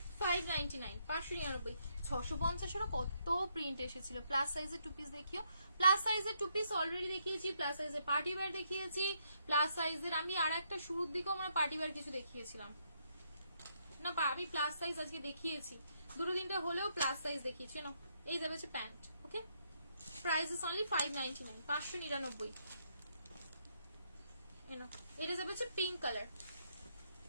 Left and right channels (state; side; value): inverted; both; correlation -0.75